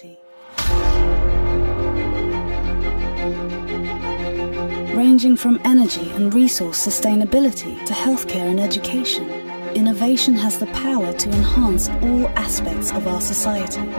Ranging from energy and resource sustainability to healthcare and education, innovation has the power to enhance all aspects of our society.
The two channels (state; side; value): inverted; both; correlation -1.00